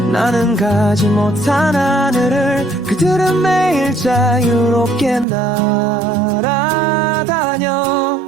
나는 가지 못한 하늘을 그들은 매일 자유롭게 날아다녀.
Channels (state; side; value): drops out; left; at 5.2 s